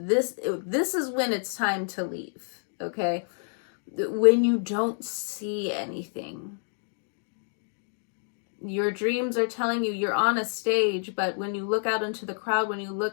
when it's time to leave, okay? When you don't see anything. Your dreams are telling you you're on a stage, but when you look out into the crowd, when you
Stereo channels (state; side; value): silent; right; digital silence